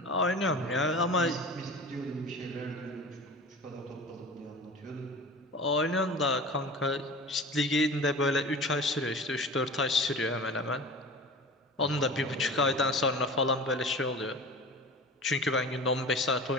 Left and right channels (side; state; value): both; normal; correlation 0.36